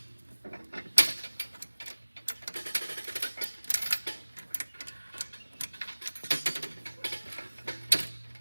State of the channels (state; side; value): inverted; both; correlation -1.00